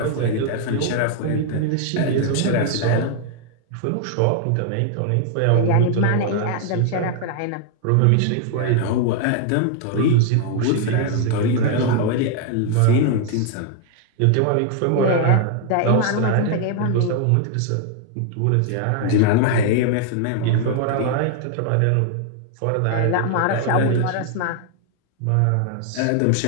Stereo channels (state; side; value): different; both; correlation 0.00